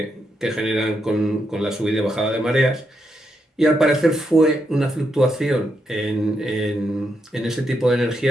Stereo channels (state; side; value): normal; both; correlation 0.81